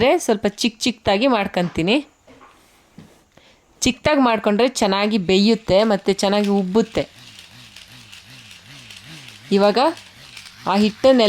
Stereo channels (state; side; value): identical; both; correlation 1.00